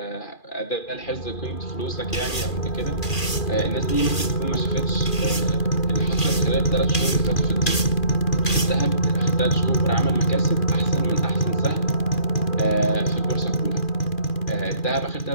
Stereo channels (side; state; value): right; late; 2.4 ms